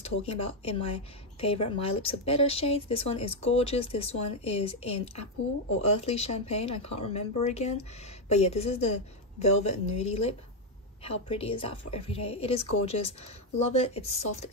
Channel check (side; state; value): both; normal; correlation 0.03